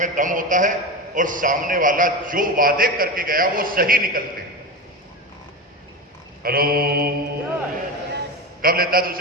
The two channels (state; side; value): normal; both; correlation 0.22